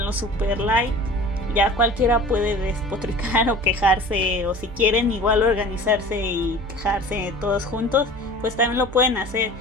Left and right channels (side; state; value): both; normal; correlation 0.41